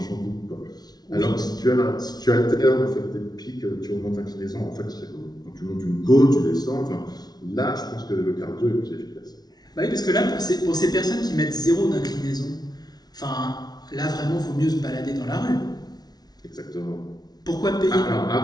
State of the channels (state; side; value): late; right; 0.19 ms